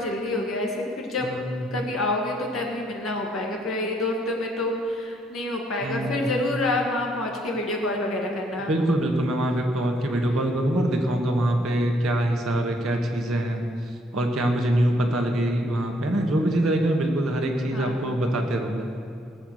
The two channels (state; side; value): normal; both; correlation 0.69